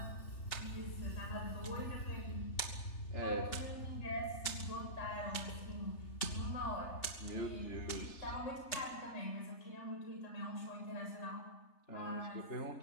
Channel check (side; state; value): right; late; 3.3 ms